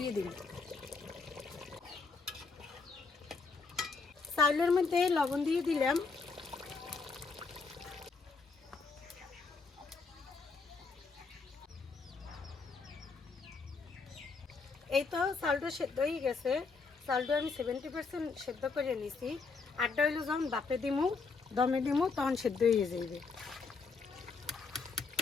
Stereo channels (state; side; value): quieter; right; 4.5 dB